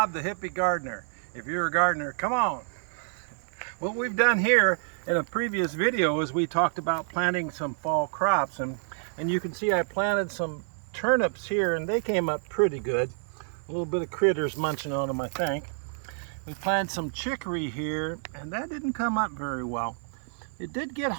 the Hippie Gardener. If you're a gardener, come on. What we've done here in a previous video is we talked about planting some fall crops, and you can see I planted some turnips here and they came up pretty good. A little bit of critters munching on them, I think. We planted some chicory here and that didn't come up very well. It did get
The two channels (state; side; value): silent; left; 59 dB below the other